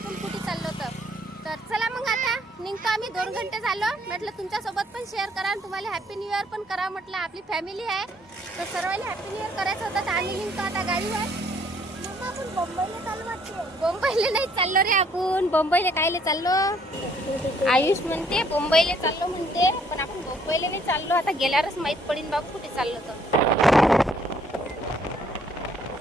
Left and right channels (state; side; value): normal; both; correlation 0.64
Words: कुठे चाललो तर चला मग आता निघतो आम्ही. 2 घंटे झालो. म्हटलं तुमच्यासोबत पण शेअर करा आणि तुम्हाला हॅपी न्यू इयर पण करा. म्हटलं आपली फॅमिली आहे तर सर्वांना हॅपी न्यू इयर करायचं होतं. तर आम्ही निघतो आता गाडीवर. आपण बंबईला चाललो वाटते. बंबईला नाही चाललो रे आपण. बंबईला कायले चाललो? आयुष म्हणते बंबईला चाललो म्हणते. पण आपण बंबईला नाही चाललो. आता गेल्यावरच माहीत पडेल बाबू कुठे चाललो तर.